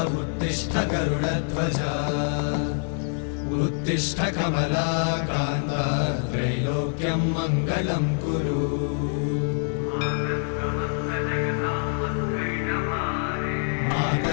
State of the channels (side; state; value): right; silent; 61 dB below the other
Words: उत्तिष्ठ गरुडध्वज उत्तिष्ठ कमलाकान्त त्रैलोक्यं मङ्गलं कुरु